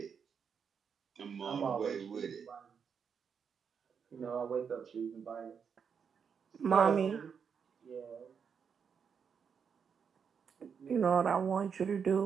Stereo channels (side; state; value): left; quieter; 6.7 dB